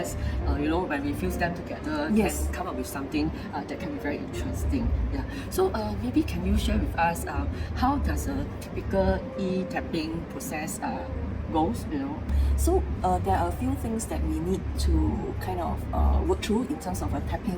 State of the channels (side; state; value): both; identical; correlation 1.00